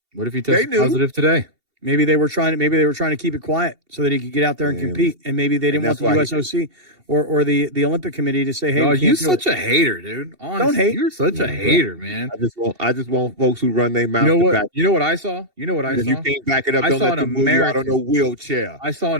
What if he tested positive today? Maybe they were trying to keep it quiet so that he could get out there and compete. And maybe they didn't want the USOC. or the Olympic Committee to say, hey, oh, you're such a hater, dude. Honestly, don't hate. You're such a hater, man. I just want folks who run their mouth. You know what? Back. You know what I saw? If you can't back it up, don't let them move you out on no wheelchair. I saw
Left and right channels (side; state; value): left; late; 2.7 ms